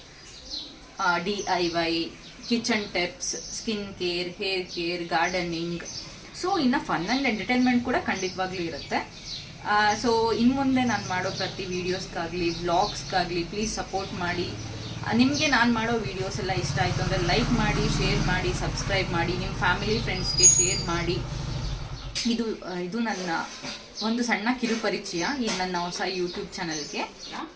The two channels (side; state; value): both; identical; correlation 1.00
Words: DIY, kitchen tips, skin care, hair care, gardening, so ಇನ್ನು ಫನ್ ಆ್ಯಂಡ್ ಎಂಟರ್ಟೈನ್ಮೆಂಟ್ ಕೂಡ ಖಂಡಿತವಾಗ್ಲೂ ಇರುತ್ತೆ. ಸೊ ಇನ್ನು ಮುಂದೆ ನಾನು ಮಾಡೋ ಪ್ರತಿ ವೀಡಿಯೋಸ್ಗಾಗಲಿ ವ್ಲಾಗ್ಸ್ಗಾಗಲಿ ಪ್ಲೀಸ್ ಸಪೋರ್ಟ್ ಮಾಡಿ. ನಿಮಗೆ ನಾನು ಮಾಡೋ ವೀಡಿಯೋಸ್ ಎಲ್ಲ ಇಷ್ಟ ಆಯಿತು ಅಂದರೆ ಲೈಕ್ ಮಾಡಿ, ಶೇರ್ ಮಾಡಿ, ಸಬ್ಸ್ಕ್ರೈಬ್ ಮಾಡಿ, ನಿಮ್ಮ ಫ್ಯಾಮಿಲಿ ಫ್ರೆಂಡ್ಸ್ಗೆ ಶೇರ್ ಮಾಡಿ. ಇದು ನನ್ನ ಒಂದು ಸಣ್ಣ ಕಿರುಪರಿಚಯ ಈ ನನ್ನ ಹೊಸ ಯೂಟ್ಯೂಬ್ ಚಾನಲ್ಗೆ.